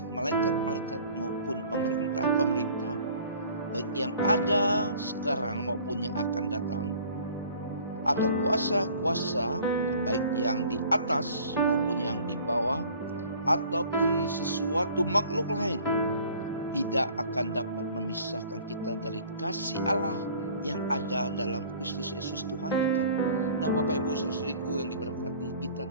malaikat-malaikat maupun pemerintah-pemerintah, baik yang ada sekarang maupun yang akan datang, atau kuasa-kuasa, baik yang di atas maupun yang di bawah, ataupun sesuatu makhluk lain, tidak akan dapat memisahkan kita dari kasih Allah yang ada dalam Kristus Yesus Tuhan kita. Nah, Bapak Ibu saudariku yang diberkati, kita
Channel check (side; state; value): both; inverted; correlation -0.50